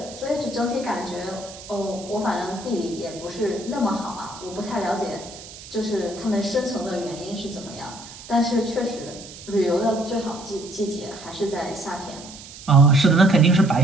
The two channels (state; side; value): noise; right; hiss, 16 dB below the sound